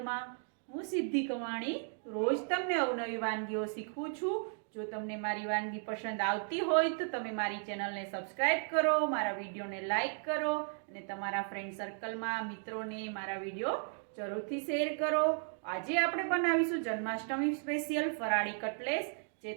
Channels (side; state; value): left; silent; 54 dB below the other